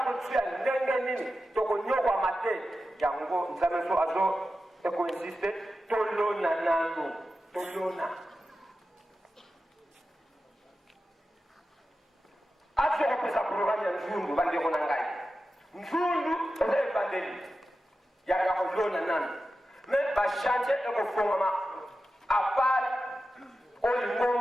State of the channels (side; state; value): both; normal; correlation 0.92